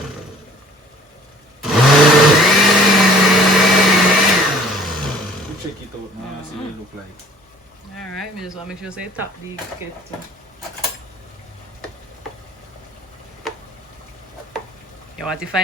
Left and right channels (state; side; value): normal; both; correlation 0.52